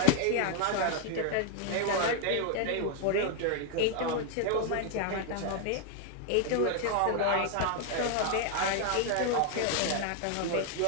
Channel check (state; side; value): different; both; correlation 0.01